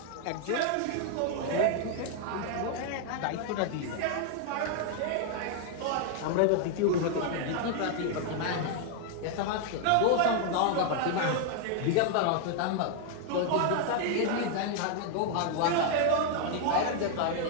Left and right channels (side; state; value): both; different; correlation 0.00